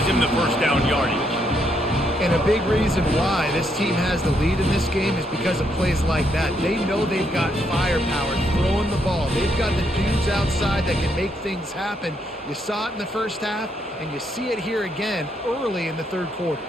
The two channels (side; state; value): both; normal; correlation 0.76